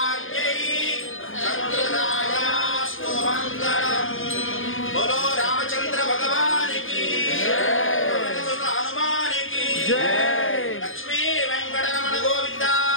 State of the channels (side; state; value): right; late; 0.59 ms